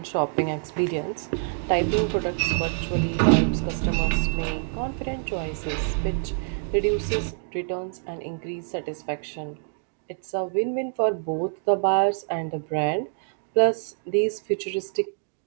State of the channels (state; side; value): silent; left; digital silence